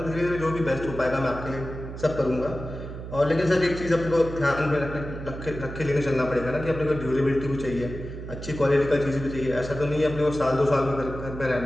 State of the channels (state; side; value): noise; right; hum, 9 dB below the sound